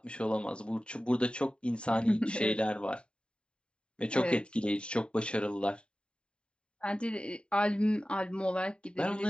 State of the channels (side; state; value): right; late; 0.052 ms